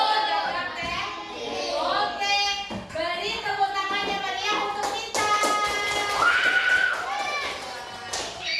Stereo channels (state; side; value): identical; both; correlation 1.00